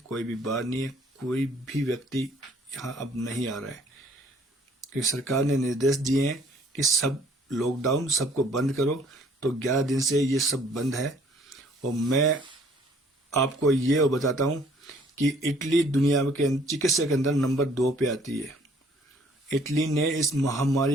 भी बार नहीं है, कोई भी व्यक्ति यहाँ अब नहीं आ रहा है, क्योंकि सरकार ने निर्देश दिए हैं कि सब लॉकडाउन, सबको बंद करो। तो 11 दिन से ये सब बंद है। और मैं आपको ये बताता हूँ कि इटली दुनिया के चिकित्सा के अंदर नंबर 2 पे आती है। इटली ने इस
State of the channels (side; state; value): both; normal; correlation 0.59